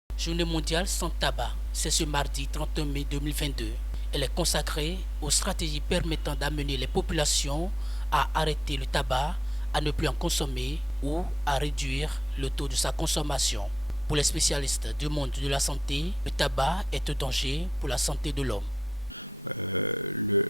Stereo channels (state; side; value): normal; both; correlation 0.88